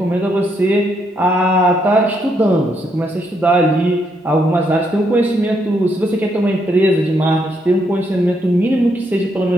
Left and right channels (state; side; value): normal; both; correlation 0.76